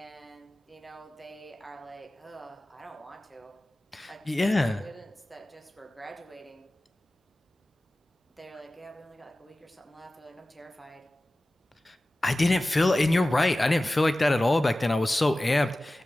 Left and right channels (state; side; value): normal; both; correlation 0.96